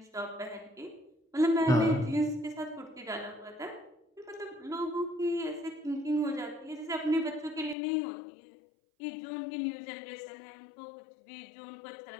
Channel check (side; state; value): right; drops out; at 7.8 s